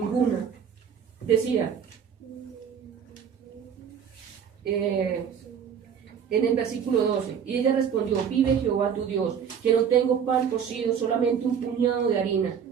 Decía, en el versículo 12, y ella respondió, vive Jehová tu Dios, que no tengo pan cocido, solamente un puñado de harina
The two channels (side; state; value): left; quieter; 7.6 dB